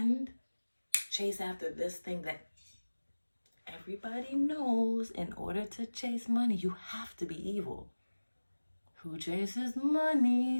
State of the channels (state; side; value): inverted; both; correlation -1.00